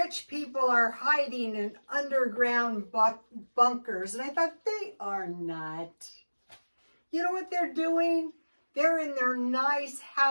people are hiding in underground bunkers. And I thought, they are not. You know what they're doing? They're in their nice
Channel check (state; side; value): inverted; both; correlation -1.00